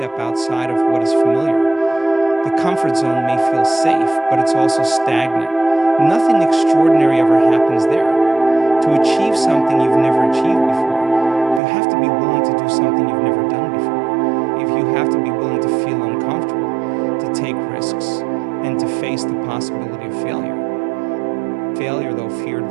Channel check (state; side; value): drops out; left; at 11.6 s